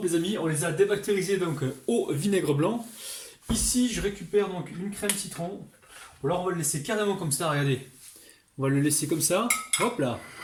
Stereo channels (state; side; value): identical; both; correlation 1.00